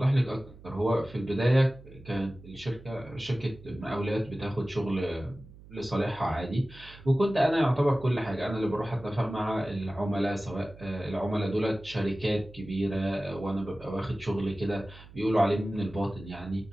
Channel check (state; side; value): noise; right; hum, 20 dB below the sound